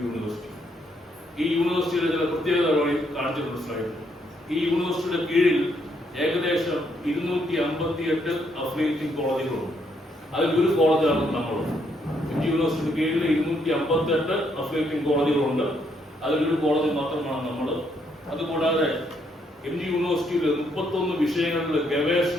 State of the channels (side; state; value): both; normal; correlation 0.73